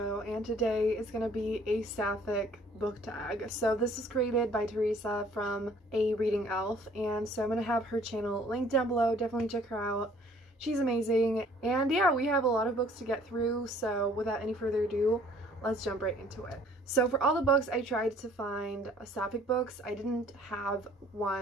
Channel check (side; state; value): both; normal; correlation 0.57